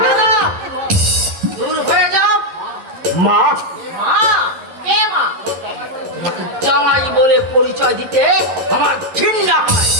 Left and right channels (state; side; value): late; left; 11 ms